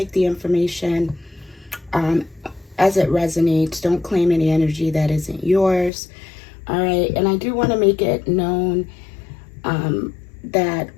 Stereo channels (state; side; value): drops out; right; at 5.9 s